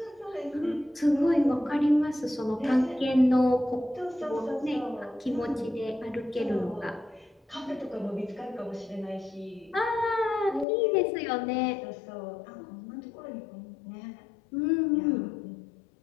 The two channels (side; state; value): right; drops out; at 10.7 s